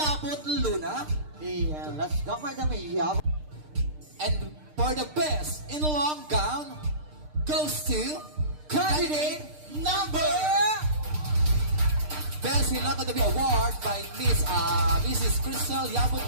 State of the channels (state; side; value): late; left; 6.6 ms